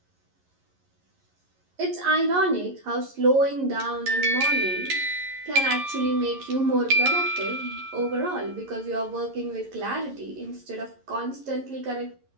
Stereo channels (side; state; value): left; late; 11 ms